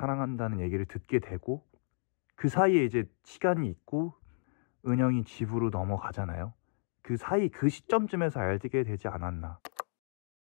얘기를 듣게 되고, 그 사이에 이제 시간이 있고 은영이 집으로 넘어가잖아요. 그 사이 그 시점쯤에서 알게 되지 않았나.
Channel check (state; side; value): silent; right; 56 dB below the other